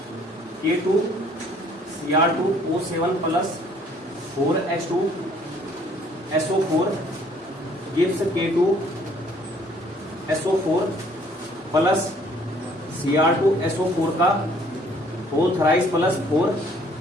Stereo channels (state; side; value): normal; both; correlation 0.60